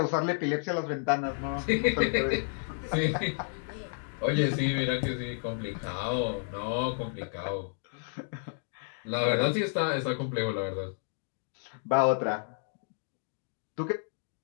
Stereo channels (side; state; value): right; silent; digital silence